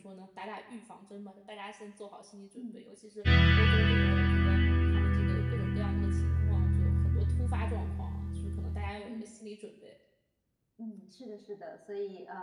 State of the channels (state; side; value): identical; both; correlation 1.00